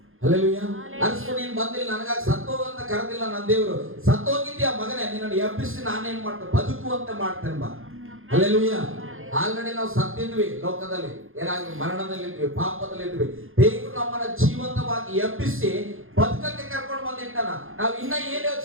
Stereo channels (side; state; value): left; late; 0.60 ms